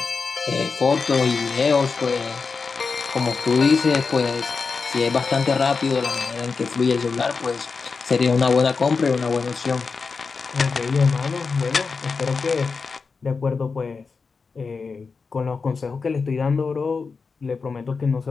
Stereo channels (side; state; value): right; quieter; 4.8 dB